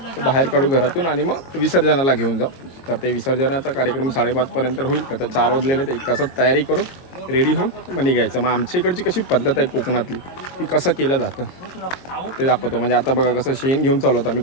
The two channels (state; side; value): late; right; 22 ms